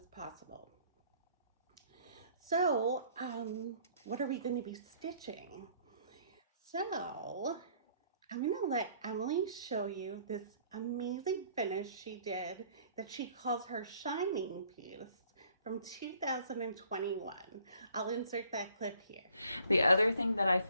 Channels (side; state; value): both; inverted; correlation -0.59